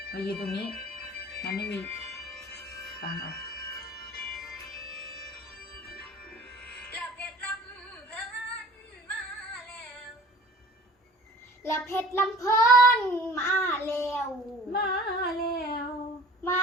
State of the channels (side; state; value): both; normal; correlation 0.46